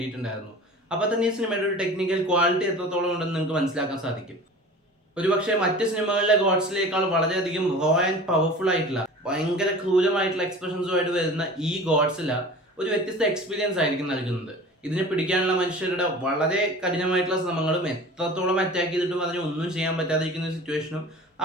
അപ്പോൾ തന്നെ ഈ സിനിമയുടെ ഒരു ടെക്നിക്കൽ ക്വാളിറ്റി എത്രത്തോളം ഉണ്ടെന്ന് നിങ്ങൾക്ക് മനസ്സിലാക്കാൻ സാധിക്കും. ഒരുപക്ഷെ മറ്റ് സിനിമകളിലെ ഗോഡ്സിലേക്കാൾ വളരെയധികം റോ ആൻഡ് പവർഫുൾ ആയിട്ടുള്ള ഭയങ്കര ക്രൂരമായിട്ടുള്ള എക്സ്പ്രഷൻസുമായിട്ട് വരുന്ന ഈ ഗോഡ്സില ഒരു വ്യത്യസ്ത എക്സ്പീരിയൻസ് ആയിരിക്കും നൽകുന്നത്. ഇതിനെ പിടിക്കാനുള്ള മനുഷ്യരുടെ വളരെ കഠിനമായിട്ടുള്ള ശ്രമങ്ങളും എത്രത്തോളം അറ്റാക്ക് ചെയ്തിട്ടും അതിനെ ഒന്നും ചെയ്യാൻ പറ്റാതിരിക്കുന്ന ഒരു സിറ്റുവേഷനും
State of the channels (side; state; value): both; normal; correlation 0.40